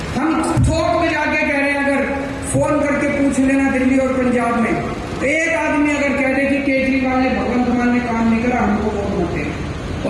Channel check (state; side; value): identical; both; correlation 1.00